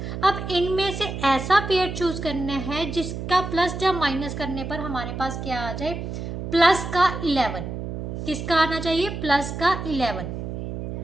अब इनमें से ऐसा पेयर चूज करना है जिसका प्लस जब माइनस करने पर हमारे पास क्या आ जाए, प्लस का 11। किसका आना चाहिए, प्लस का 11,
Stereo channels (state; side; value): noise; right; hum, 6 dB below the sound